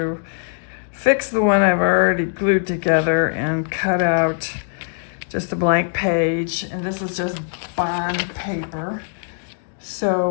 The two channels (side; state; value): right; silent; digital silence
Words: fix the one I've already glued together and cut out just a blank page, and this is just bond paper.